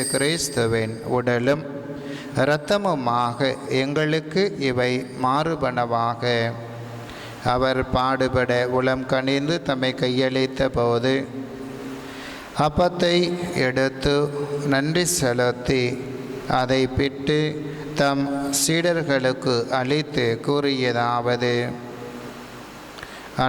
கிறிஸ்துவின் உடலும் இரத்தமுமாக எங்களுக்கு இவை மாறுபனவாக. அவர் பாடுபட உளம் கனிந்து தம்மை கையளித்த போது அப்பத்தை எடுத்து நன்றி செலுத்தி அதை பிட்டு தம் சீடர்களுக்கு அளித்து கூறியதாவது:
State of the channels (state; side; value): identical; both; correlation 1.00